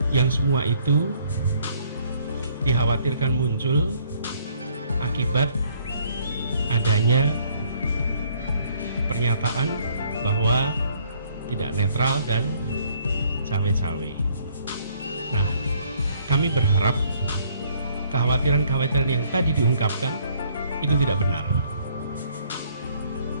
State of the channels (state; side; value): inverted; both; correlation -0.64